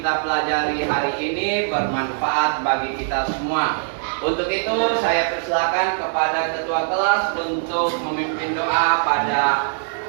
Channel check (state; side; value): silent; left; 57 dB below the other